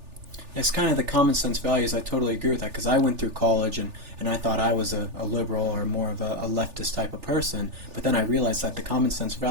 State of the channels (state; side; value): late; left; 3.4 ms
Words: It's kind of the common sense values. I totally agree with that because I went through college and I thought I was a liberal or more of a leftist type of person. But then I realized that the common sense